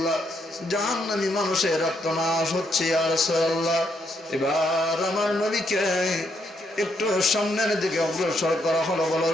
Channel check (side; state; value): both; normal; correlation 0.76